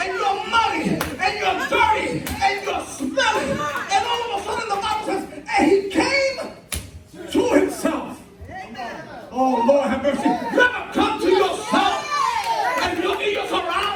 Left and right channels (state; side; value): identical; both; correlation 1.00